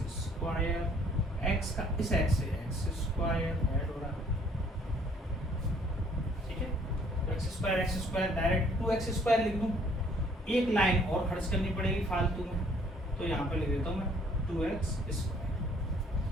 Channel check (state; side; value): normal; both; correlation 0.61